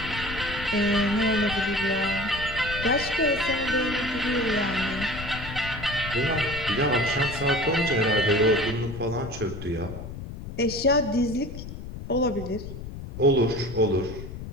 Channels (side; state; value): left; noise; rumble, 10 dB below the sound